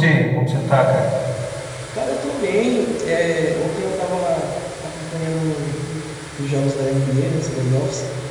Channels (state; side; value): identical; both; correlation 1.00